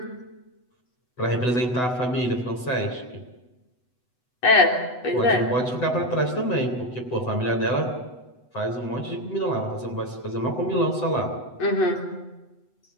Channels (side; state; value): right; late; 8.1 ms